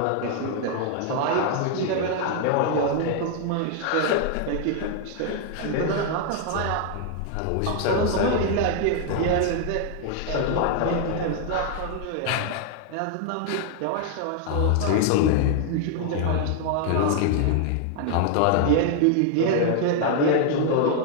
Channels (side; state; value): both; different; correlation 0.00